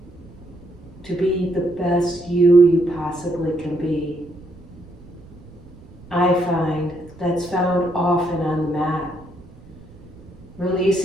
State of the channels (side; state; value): right; noise; rumble, 22 dB below the sound